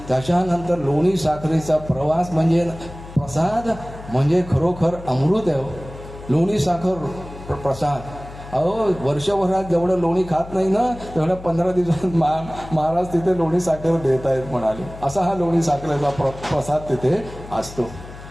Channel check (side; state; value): left; noise; hum, 15 dB below the sound